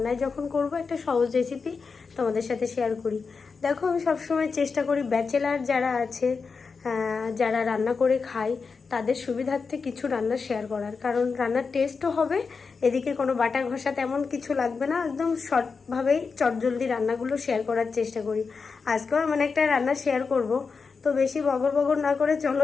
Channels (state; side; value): quieter; right; 5.0 dB